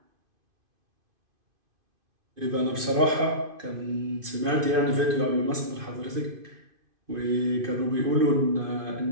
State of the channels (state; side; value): late; left; 2.5 ms